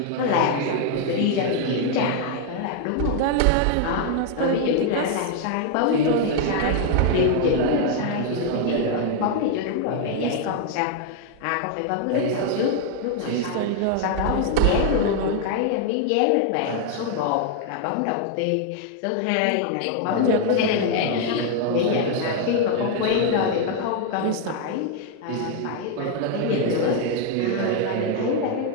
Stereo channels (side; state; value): both; different; correlation 0.00